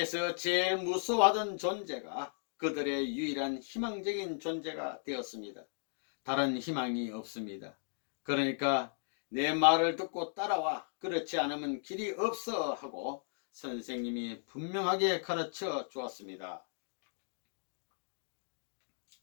제일 무서워하던 존재가 그들의 유일한 희망적인 존재가 되었습니다. 다른 희망이 없습니다. 그러니까 내 말을 듣고 따라와, 그렇지 않으면 길이 없어 하고 선생님이 분명하게 가르쳐 주었습니다.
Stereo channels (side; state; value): right; silent; digital silence